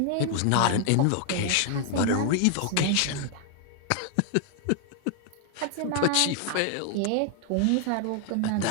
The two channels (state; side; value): different; both; correlation 0.00